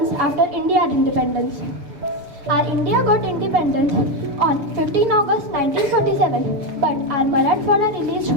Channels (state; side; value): late; left; 6.8 ms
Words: after India's independence. Our India got independence on 15 August 1947, but our Marathwada